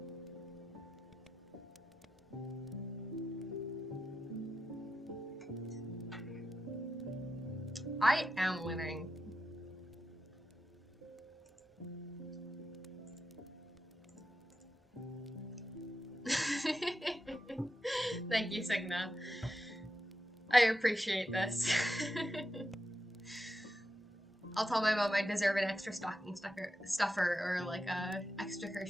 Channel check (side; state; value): both; normal; correlation 0.88